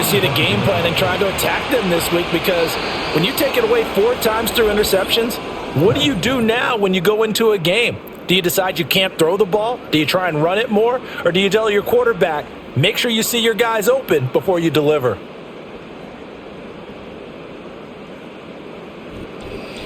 see the game plan and try to attack them this week, because when you take it away 4 times through interceptions, what do you do now when you go into a game? Do you decide you can't throw the ball? Do you try and run it more? Or do you tell your quarterback, make sure you see your guys open before you deliver?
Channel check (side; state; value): both; identical; correlation 1.00